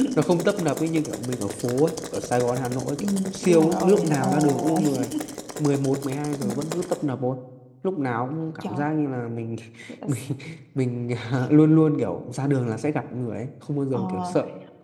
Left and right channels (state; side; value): identical; both; correlation 1.00